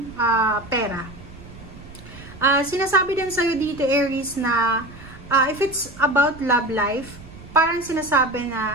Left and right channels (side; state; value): right; noise; rumble, 17 dB below the sound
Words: pera. Sinasabi din sa'yo dito, Aries, na if it's about love life, parang sinasabi